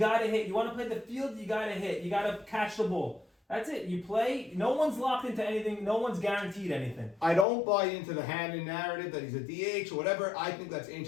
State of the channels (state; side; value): drops out; right; at 7.5 s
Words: to hit. You want to play the field, you got to hit. You got to catch the ball. That's it. You play. No one's locked into anything. No one's guaranteed anything. I don't buy into the Hannon narrative that he's a DH or whatever. I think that's